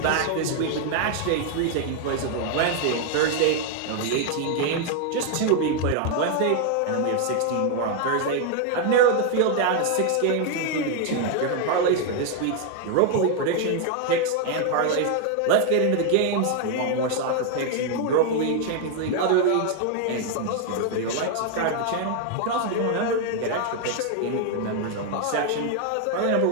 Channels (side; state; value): both; different; correlation 0.00